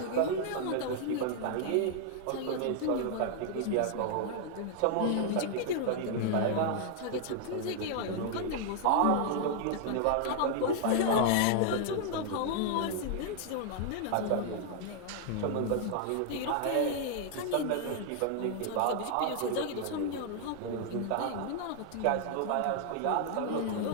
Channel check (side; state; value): both; different; correlation 0.00